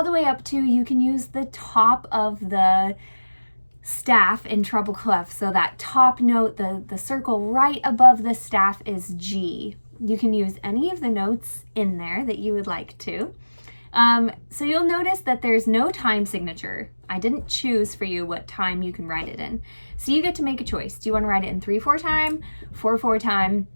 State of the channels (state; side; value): inverted; both; correlation -1.00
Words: the way up to, you can use the top of the staff in treble clef. So that top note, the circle right above the staff is G. You can use any of the notes in there that you would like to. So you'll notice that there's no time signature. I didn't choose for you what time you can write it in. So you get to make a choice. Do you want to write it in 3/4 time, 4/4 time?